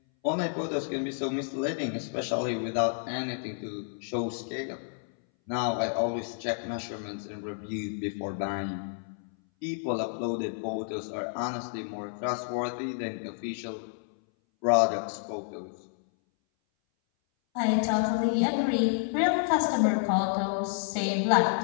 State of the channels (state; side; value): silent; right; 58 dB below the other